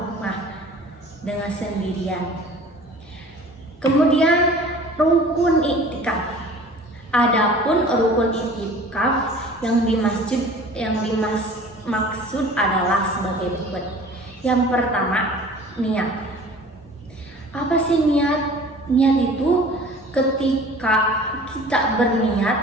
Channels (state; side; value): normal; both; correlation 0.45